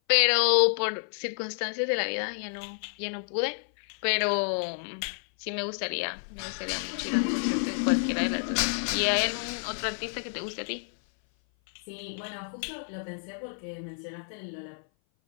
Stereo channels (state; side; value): silent; right; 57 dB below the other